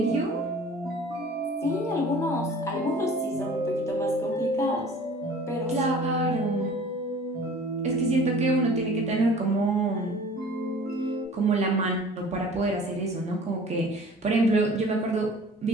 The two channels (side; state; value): both; normal; correlation 0.46